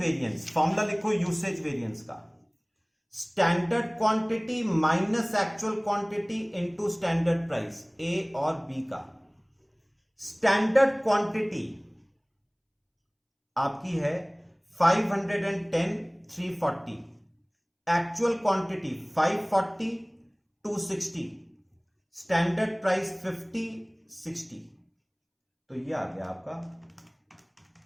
फॉर्मूला लिखो यूसेज वेरिएंस का, standard quantity minus actual quantity into standard price, A और बी का। स्टैंडर्ड क्वांटिटी आपकी है 510 340, एक्चुअल क्वांटिटी 540 260, स्टैंडर्ड प्राइस 50 60, तो ये आ गया आपका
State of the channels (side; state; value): both; identical; correlation 1.00